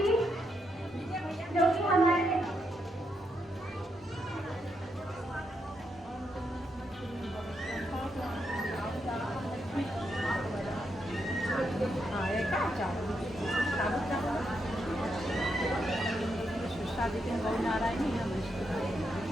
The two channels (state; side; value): normal; both; correlation 0.81